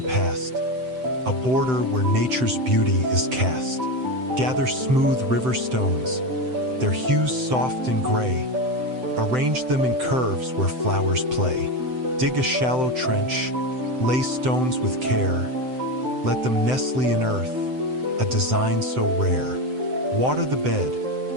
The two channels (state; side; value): late; left; 7.8 ms